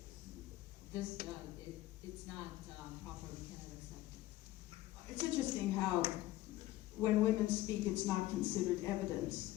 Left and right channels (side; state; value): right; quieter; 16.1 dB